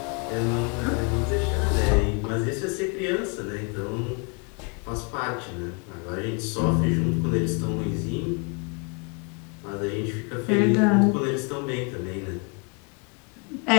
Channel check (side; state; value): right; quieter; 34.1 dB